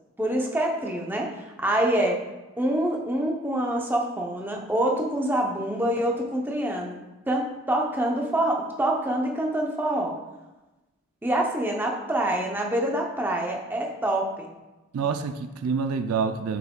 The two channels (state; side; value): normal; both; correlation 0.57